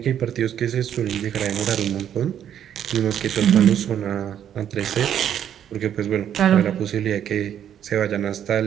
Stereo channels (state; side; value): quieter; left; 9.8 dB